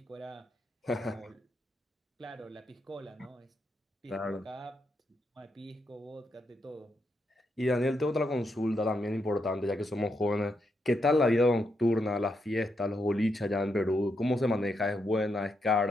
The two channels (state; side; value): normal; both; correlation 0.81